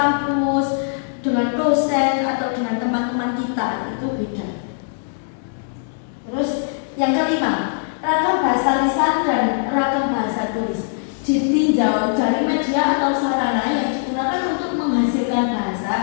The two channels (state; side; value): silent; right; digital silence